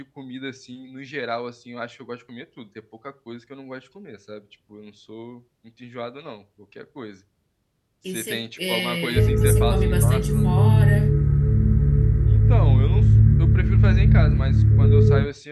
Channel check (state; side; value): identical; both; correlation 1.00